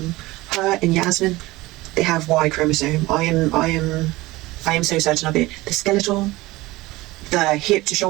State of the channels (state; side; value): quieter; left; 19.7 dB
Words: Her and Yasmin, they have Y chromosome. I am so certain of it. The skeletal, the hip to